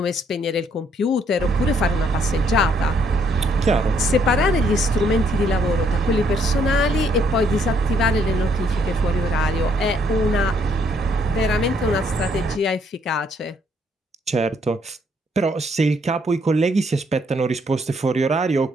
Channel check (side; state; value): both; normal; correlation 0.69